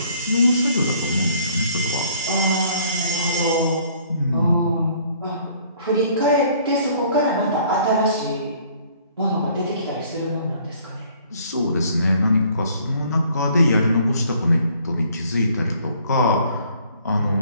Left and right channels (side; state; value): both; inverted; correlation -0.59